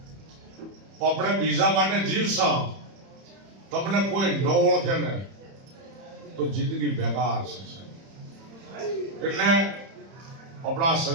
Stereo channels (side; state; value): left; late; 31 ms